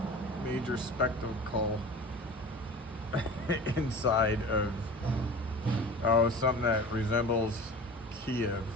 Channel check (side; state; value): both; normal; correlation 0.37